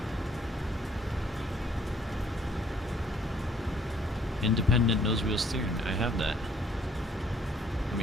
Independent nose wheel steering. I have that. Let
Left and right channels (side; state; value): both; normal; correlation 0.62